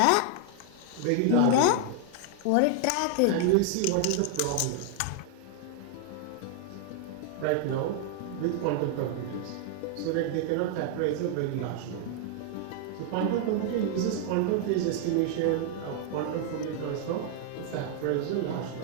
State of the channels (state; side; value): different; both; correlation 0.00